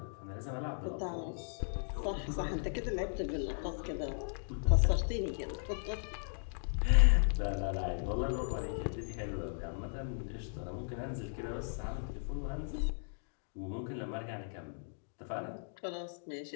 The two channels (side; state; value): right; silent; digital silence